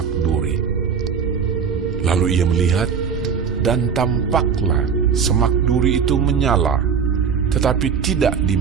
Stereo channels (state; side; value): quieter; left; 6.7 dB